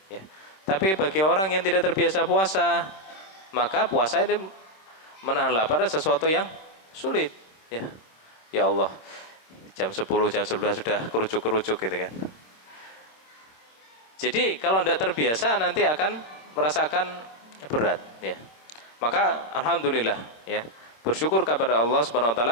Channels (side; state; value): right; late; 26 ms